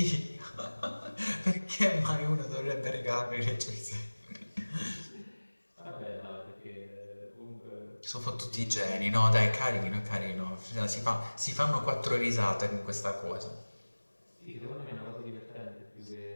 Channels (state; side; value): inverted; both; correlation -1.00